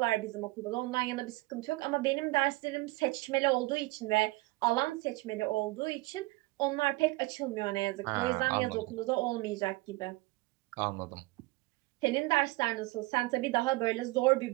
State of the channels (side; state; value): left; quieter; 22.2 dB